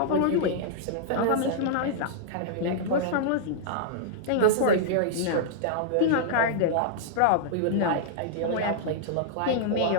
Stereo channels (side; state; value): both; different; correlation -0.02